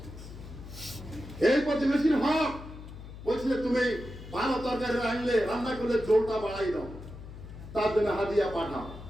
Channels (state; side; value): noise; left; hum, 13 dB below the sound